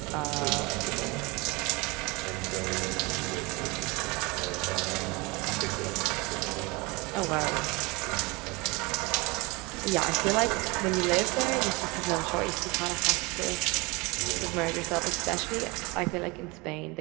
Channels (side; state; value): left; quieter; 25.8 dB